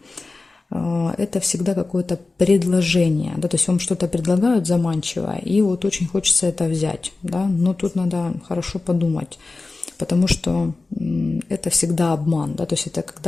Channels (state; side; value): quieter; right; 3.6 dB